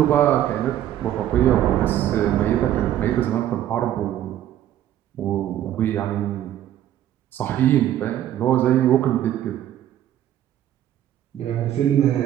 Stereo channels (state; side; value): quieter; left; 11.9 dB